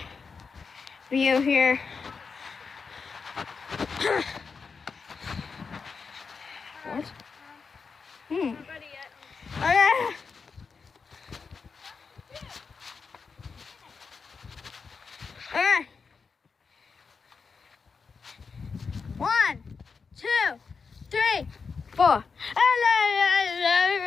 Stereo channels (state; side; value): quieter; right; 5.2 dB